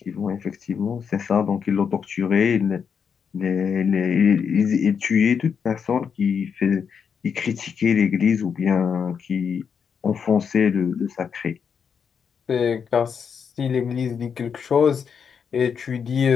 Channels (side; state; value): right; quieter; 6.8 dB